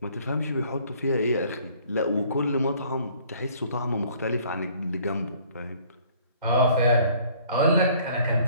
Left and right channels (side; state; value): both; inverted; correlation -0.57